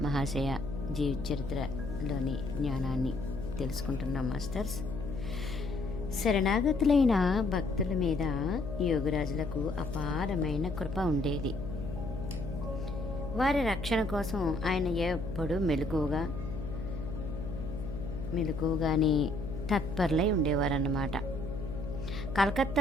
మహాశయ జీవిత చరిత్రలోని జ్ఞానాన్ని తెలుసుకుంటున్నాం మాస్టర్స్. శరణాగతులైన భక్తుల మీద యోగిరాజులకు అపారమైన కృప ఉండేది. వారి రక్షణ కోసం ఆయన ఎప్పుడూ మెలకుగానే తత్పరులై ఉండేవారన్నమాట.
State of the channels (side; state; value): left; noise; hum, 7 dB below the sound